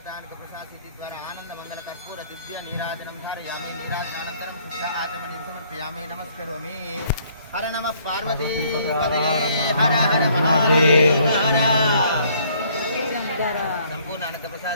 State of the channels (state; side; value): inverted; both; correlation -0.62